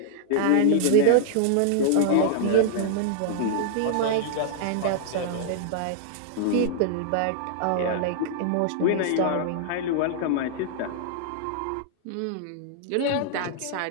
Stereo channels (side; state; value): both; different; correlation 0.00